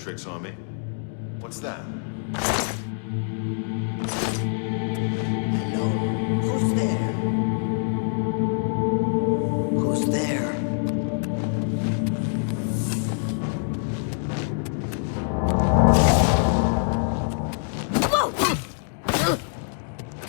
on me. What's that? Hello? Who's there? Who's there?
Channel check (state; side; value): silent; right; digital silence